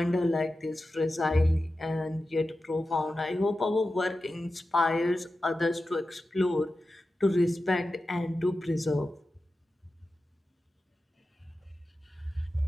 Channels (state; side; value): normal; both; correlation 0.93